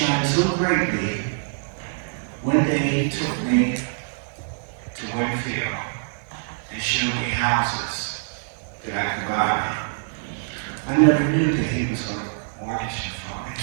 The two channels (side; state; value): left; silent; digital silence